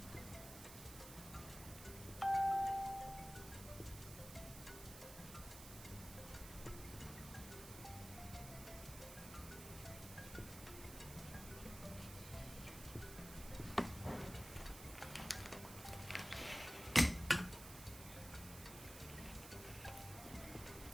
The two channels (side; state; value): right; noise; hiss, 12 dB below the sound